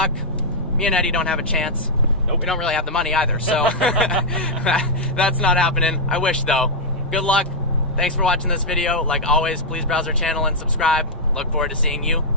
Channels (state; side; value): normal; both; correlation -0.06